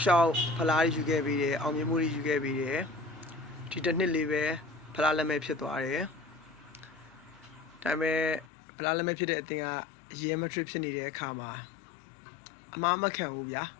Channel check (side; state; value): right; drops out; at 8.5 s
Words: လျှောက်ဖလားယူခဲ့ပြီးတယ်အောင်မြင်မှုတွေယူခဲ့ပြီးတယ်ဒီတစ်နှစ်လေးပဲဖလားလက်မဲ့ဖြစ်သွားတယ်ဒါပေမဲ့ဖလားလက်မဲ့ဖြစ်တဲ့အသင်းကရီယယ်မက်ဒရစ်ဖြစ်နေတဲ့အခါမှာအမားမခံဘူးဗျာ